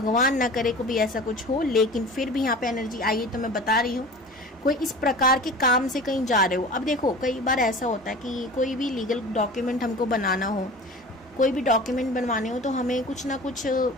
ना करे को भी ऐसा कुछ हो, लेकिन फिर भी यहाँ पे एनर्जी आई है तो मैं बता रही हूँ, कोई इस प्रकार के काम से कहीं जा रहे हो। अब देखो कई बार ऐसा होता है कि कोई भी लीगल डॉक्यूमेंट हमको बनाना हो, कोई भी डॉक्यूमेंट बनवाने हो, तो हमें कुछ ना कुछ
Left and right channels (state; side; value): normal; both; correlation 0.38